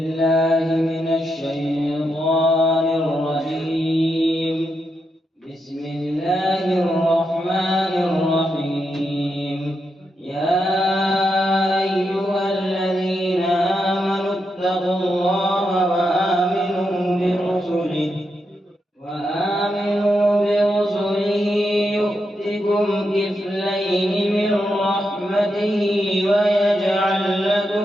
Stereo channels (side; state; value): both; normal; correlation 0.84